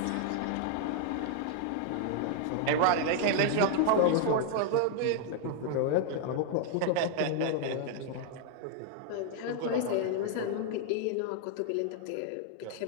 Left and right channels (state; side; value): different; both; correlation 0.00